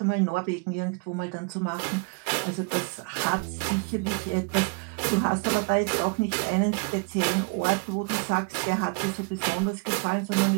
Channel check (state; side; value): quieter; left; 33.6 dB